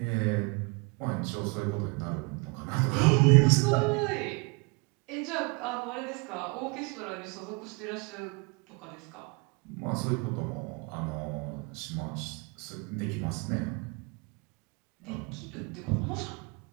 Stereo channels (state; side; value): quieter; left; 30.0 dB